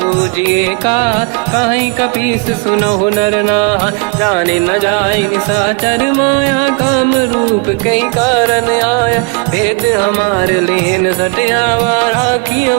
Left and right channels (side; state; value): left; quieter; 30.0 dB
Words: पूजिए का, कहीं कपीस सुनहु नर नाहा। जाने न जाए साचर माया, काम रूप कई कारण आया। भेद हमार लेन सटियावा, राखी